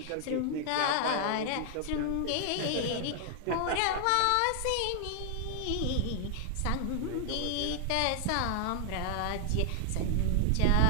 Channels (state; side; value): different; both; correlation 0.00